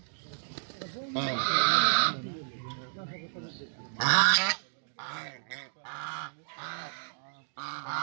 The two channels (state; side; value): silent; left; digital silence